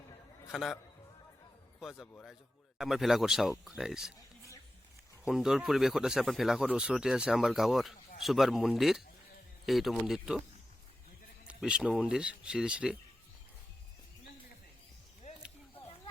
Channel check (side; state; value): both; normal; correlation 0.92